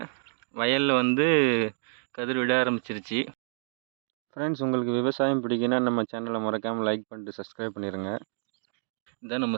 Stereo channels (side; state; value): left; silent; 56 dB below the other